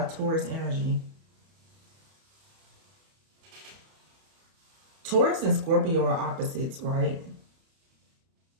Taurus energy. Taurus and Scorpio are opposites, right?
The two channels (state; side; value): late; left; 31 ms